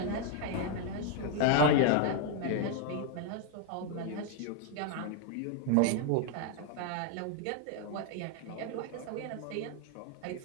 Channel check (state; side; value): different; both; correlation 0.00